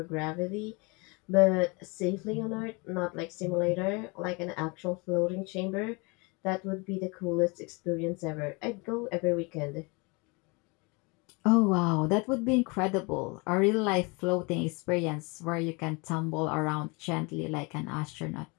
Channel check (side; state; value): right; quieter; 28.8 dB